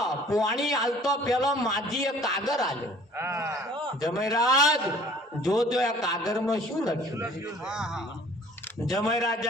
પુવાણી આલતો પેલો માજીએ કાગર આલ્યો જમાઈ રાજ જોજો આ કાગરમાં શું લખ્યું જમાઈ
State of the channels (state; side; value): normal; both; correlation 0.52